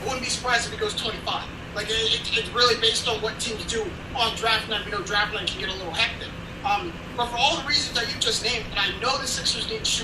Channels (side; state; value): both; identical; correlation 1.00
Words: I wouldn't be surprised if he goes 25. Like, it's really based on what teams do on draft night. Draft night can get a little hectic. But for all the reasons that you just named, and I know the Sixers need